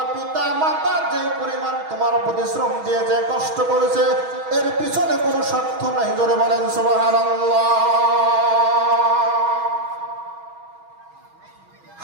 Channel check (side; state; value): left; late; 6.2 ms